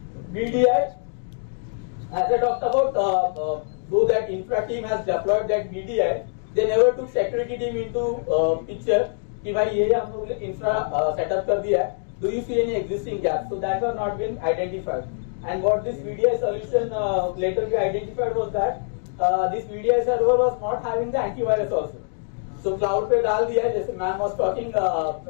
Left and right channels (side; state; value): right; silent; digital silence